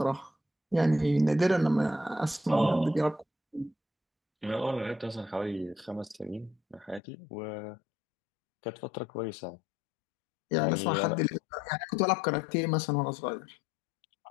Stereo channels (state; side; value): drops out; right; at 7.0 s